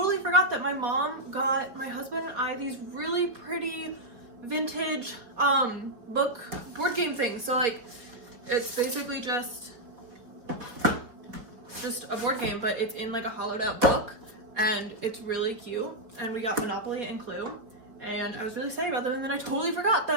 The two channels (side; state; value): left; late; 4.3 ms